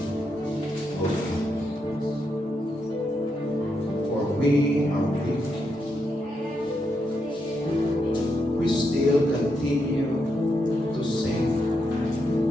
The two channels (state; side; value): normal; both; correlation 0.82